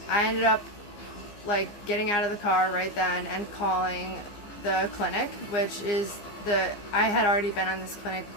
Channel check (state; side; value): late; right; 15 ms